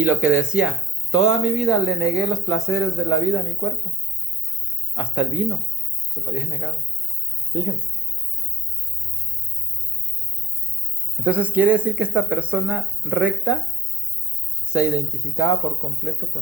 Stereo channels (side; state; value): both; normal; correlation 0.68